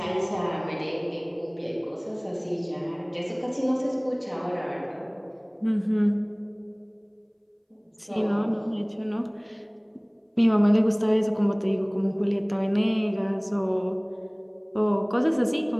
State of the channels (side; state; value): both; identical; correlation 1.00